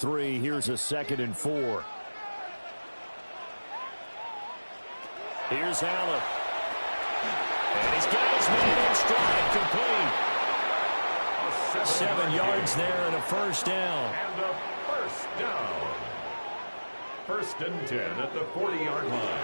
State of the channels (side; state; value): both; inverted; correlation -1.00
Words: here's a 2nd and 4. Here's Allen. And he's got his man in stride, complete. 7 yards there and a first down. And a first down. 1st and 10 at the 40-yard line.